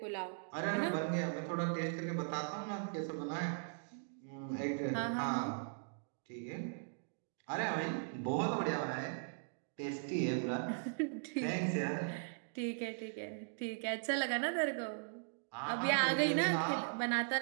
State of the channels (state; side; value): silent; left; digital silence